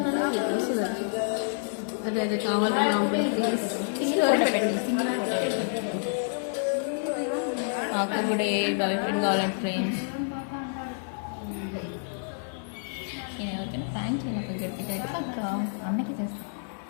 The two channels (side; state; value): right; silent; 59 dB below the other